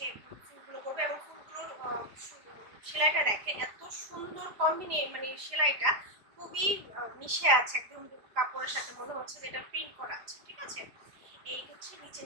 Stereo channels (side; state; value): left; late; 4.9 ms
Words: ফুলগুলো করবে এবং ফুলগুলোর সেলাইটা দেখেন এত সুন্দর মানে সেলাইটা খুবই মিশে আছে একদম কাপড়ের সাথে, মনে হচ্ছে যে এটা প্রিন্ট করা আছে। ঠিক আছে, এই হচ্ছে